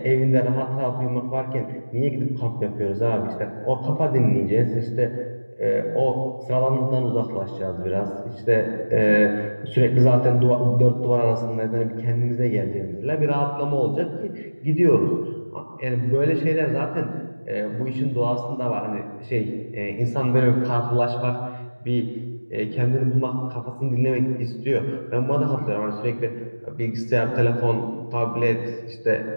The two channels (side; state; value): both; inverted; correlation -1.00